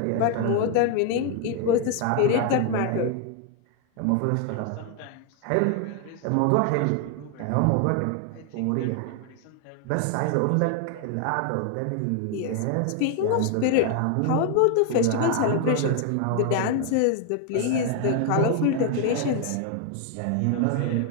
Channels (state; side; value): different; both; correlation 0.01